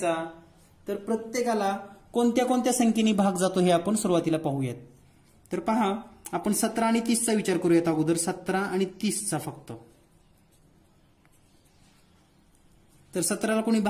तर प्रत्येकाला कोणत्या कोणत्या संख्येने भाग जातो हे आपण सुरुवातीला पाहूयात. तर पहा, आपण 17 आणि 30चा विचार करूयात अगोदर. 17 आणि 30चा फक्त. तर 17ला कोणी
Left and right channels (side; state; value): both; identical; correlation 1.00